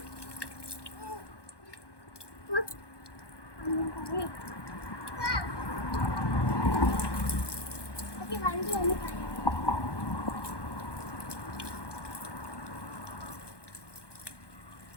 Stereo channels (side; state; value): right; late; 1.2 ms